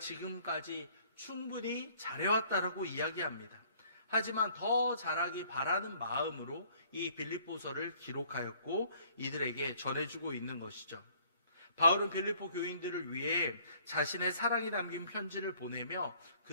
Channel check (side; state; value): both; inverted; correlation -0.59